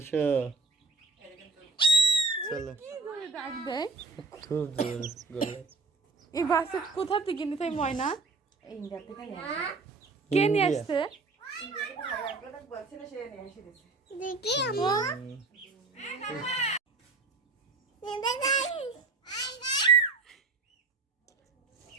চলো, কি করে ডাক দেয় খুব জোর গলা। এই বাসে কোথা থেকে নিতে হয় ময়না? ময়না কে নিয়ে ইন্ডিয়া। আসছে? দেখি আমু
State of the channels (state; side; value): quieter; left; 3.9 dB